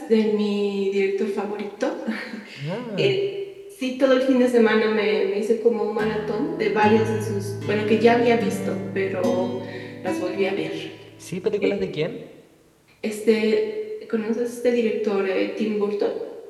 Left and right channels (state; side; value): identical; both; correlation 1.00